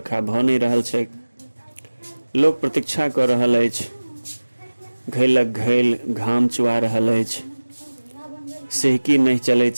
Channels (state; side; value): inverted; both; correlation -1.00